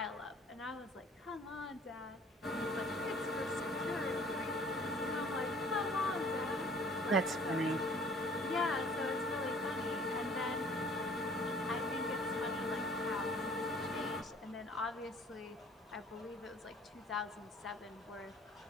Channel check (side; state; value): both; normal; correlation 0.53